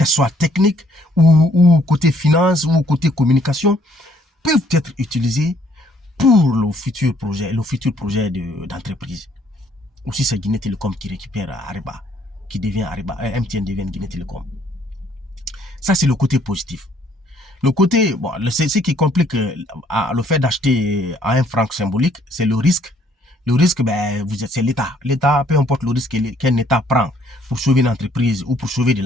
soient techniques ou côté finance ou côté communication, peuvent être utilisées pour le futur projet d'entreprise. Aussi, c'est Guinée Télécom qui récupère Ariba, qui devient Ariba, MTN devient Guinée Télécom. Ça, c'est le côté positif. Le côté, bon, ce qui complique le fait d'acheter à un franc symbolique, c'est le risque. Le risque, c'est l'État. L'État, peu importe le risque qu'un État prend pour sauver une entreprise ou pour sauver de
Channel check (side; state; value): both; normal; correlation 0.64